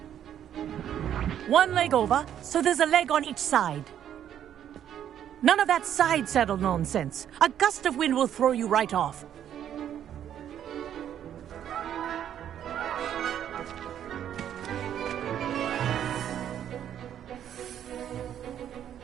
One leg over, so there's a leg on each side. None of that side saddle nonsense. A gust of wind will throw you right off.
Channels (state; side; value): quieter; left; 10.1 dB